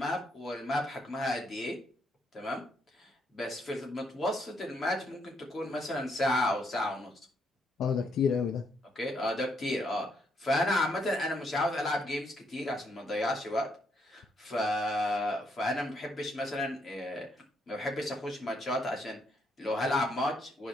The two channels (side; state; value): both; normal; correlation 0.74